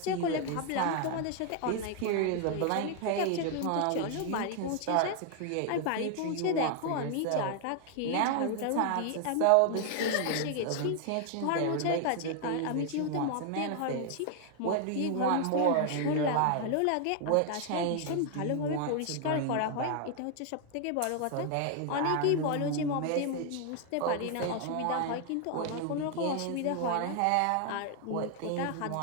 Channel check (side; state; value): both; different; correlation 0.00